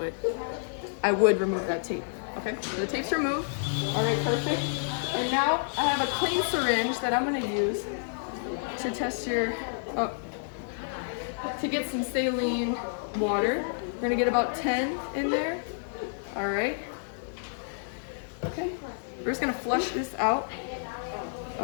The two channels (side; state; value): right; silent; digital silence